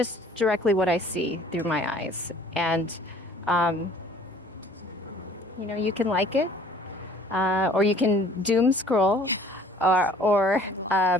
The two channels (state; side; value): normal; both; correlation 0.53